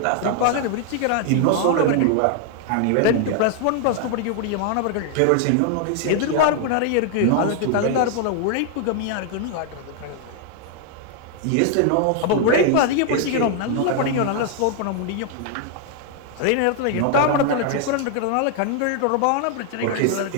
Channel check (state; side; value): different; both; correlation 0.00